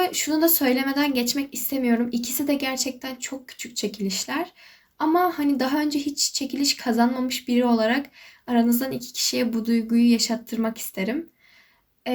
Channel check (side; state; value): both; identical; correlation 1.00